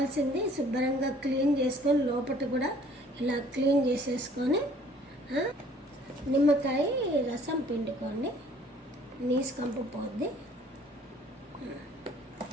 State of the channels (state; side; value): normal; both; correlation 0.56